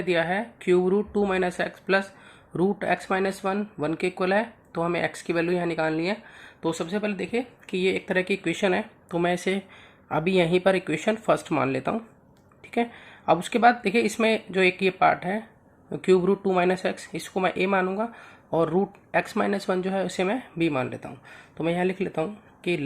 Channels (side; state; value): both; identical; correlation 1.00